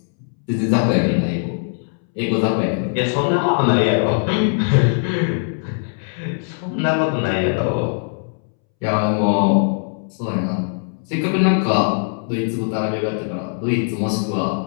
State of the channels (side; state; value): right; silent; 66 dB below the other